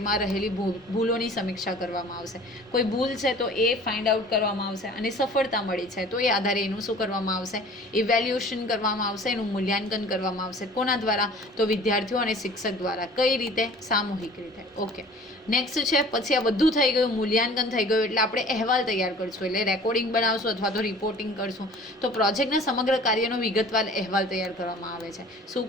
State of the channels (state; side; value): normal; both; correlation 0.47